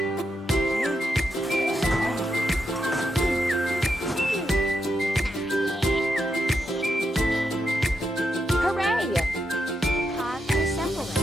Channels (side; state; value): both; normal; correlation 0.83